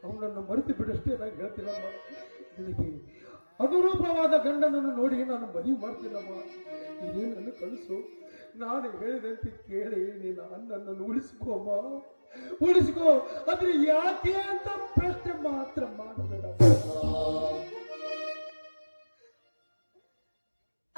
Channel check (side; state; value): both; inverted; correlation -1.00